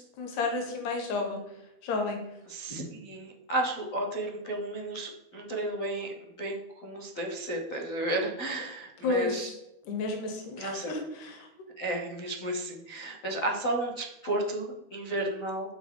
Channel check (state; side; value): late; right; 12 ms